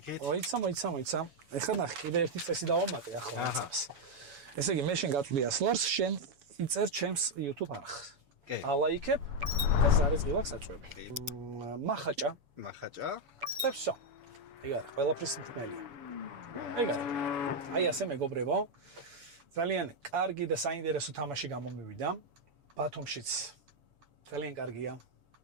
მოიცა. ეხლა ნახე, კიდე ერთი წესი დავამატე ახლა ამას. ესე იგი, მე შენ გაწვდი 100 ლარს, შენ იწერ ჩემს YouTube არხს. კი. ალაიქებ და ზარეს ღილაკს აწვევი. მახაჭა და всё. ეგ არის, ყველაფრის მთმელია. ეგ არის. აი ასე მეგობრებო. ძალიან კარგი და საინტერესო თამაში გამომივიდა. ბათუმშიც ძალიან კარგია.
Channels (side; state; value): left; late; 7.1 ms